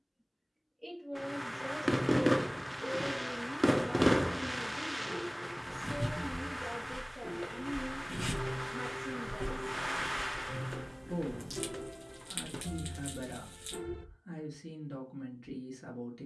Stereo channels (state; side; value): identical; both; correlation 1.00